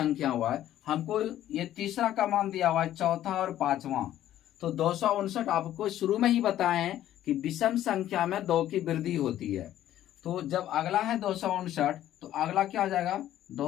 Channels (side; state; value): right; quieter; 12.5 dB